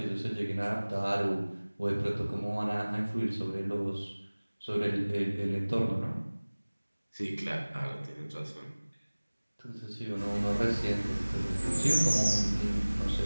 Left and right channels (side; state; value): both; inverted; correlation -1.00